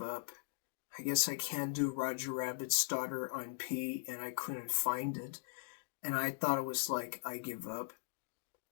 up. I guess I can't do Roger Rabbit's starter on P, and I couldn't find it, and I thought it was like, I give up.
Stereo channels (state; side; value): silent; right; digital silence